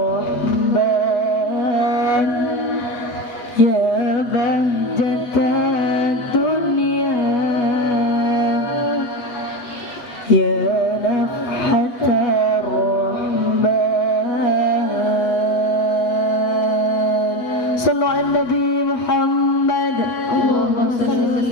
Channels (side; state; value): right; late; 8.2 ms